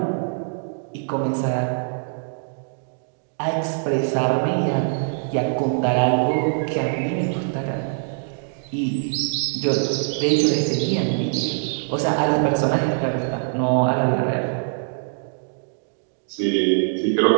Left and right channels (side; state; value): left; silent; digital silence